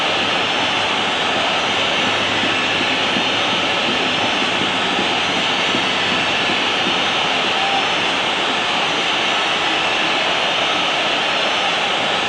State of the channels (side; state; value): both; identical; correlation 1.00